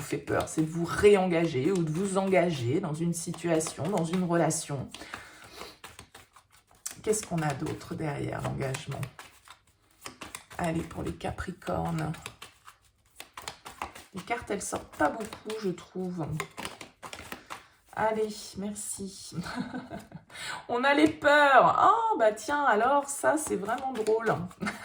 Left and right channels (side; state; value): both; identical; correlation 1.00